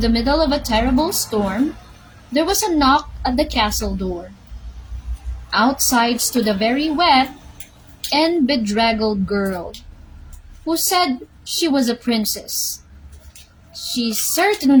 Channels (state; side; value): identical; both; correlation 1.00